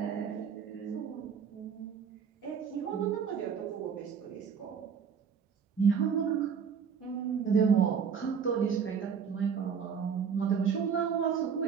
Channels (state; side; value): quieter; left; 6.9 dB